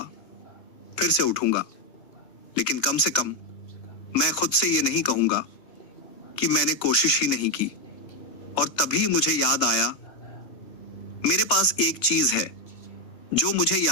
फिर से उठूंगा, लेकिन कम से कम मैं खुद से ये नहीं कहूंगा कि मैंने कोशिश ही नहीं की। और तभी मुझे याद आया, मेरे पास एक चीज है जो मुझे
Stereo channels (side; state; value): right; late; 2.7 ms